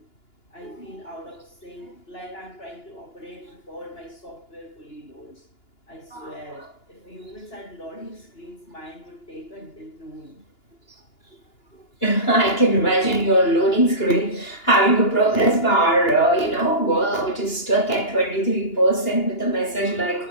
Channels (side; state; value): right; late; 2.9 ms